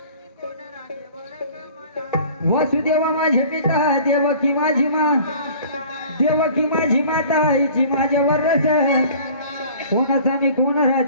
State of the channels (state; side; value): inverted; both; correlation -0.47